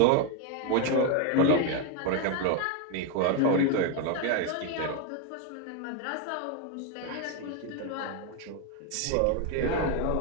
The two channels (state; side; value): different; both; correlation 0.02